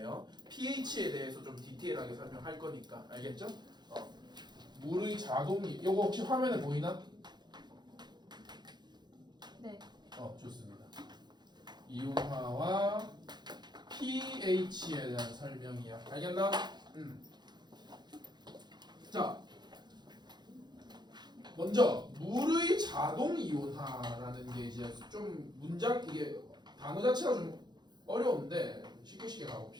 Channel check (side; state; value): left; late; 0.21 ms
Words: pH에 대해서 좀 디테일하게 설명할 거니까. 알겠죠? 물의 자동이 이거 혹시 화면에 보이나? 네. 좋습니다. 이온화와 pH에 대한 설명이야. 알겠나? 자, 먼저 물의 자동 이온화라는 게 이제 좀 문장 이게 단어 자체가 좀 어려운데 쉽게